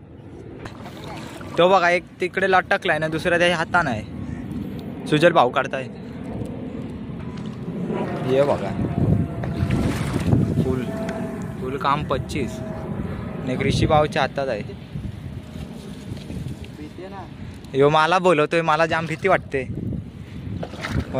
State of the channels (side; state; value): both; identical; correlation 1.00